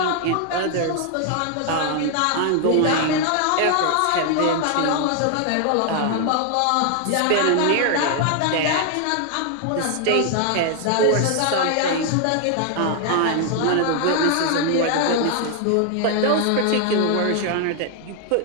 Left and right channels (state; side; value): different; both; correlation 0.00